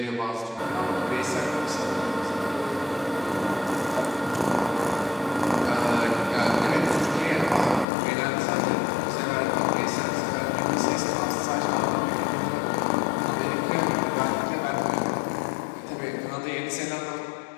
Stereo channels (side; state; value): right; drops out; at 7.9 s